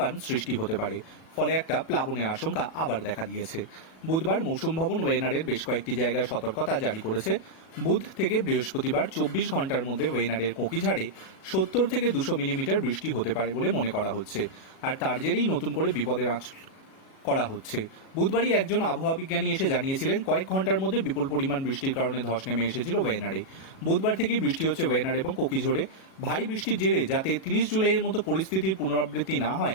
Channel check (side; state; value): right; late; 37 ms